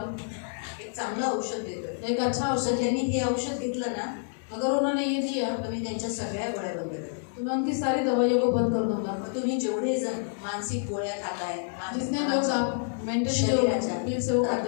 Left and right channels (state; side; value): silent; right; digital silence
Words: हूँ, एक चांगलं औषध देतोय। एक अच्छा तर औषधि। त्यांनी हे औषध घेतलं ना अगर उन्होंने ये दिया तर मी त्यांच्या सगळ्या गोळ्या बंद करेन। तो मैं उनकी सारी दवाइयों को बंद कर दूंगा। तुम्ही जेवढे जण मानसिक गोळ्या खाताय, जितने लोग आप मेंटली शरीराच्या, जो पील से वो